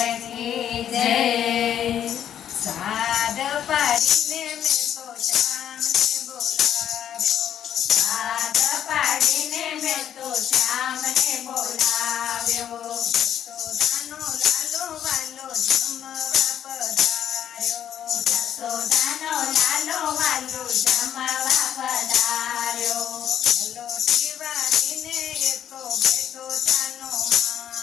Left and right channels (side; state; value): right; quieter; 10.0 dB